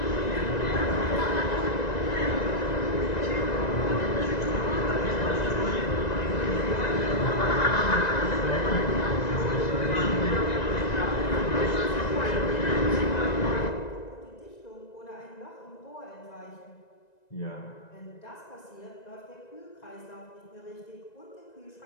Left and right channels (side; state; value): right; late; 1.9 ms